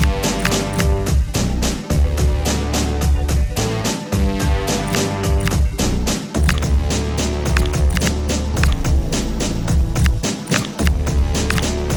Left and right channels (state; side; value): identical; both; correlation 1.00